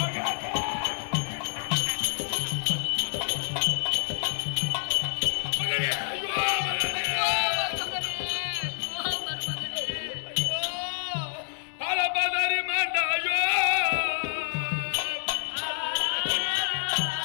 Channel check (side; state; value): right; silent; digital silence